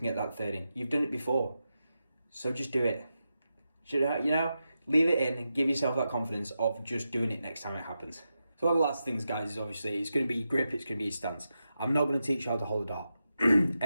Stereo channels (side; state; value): both; inverted; correlation -0.89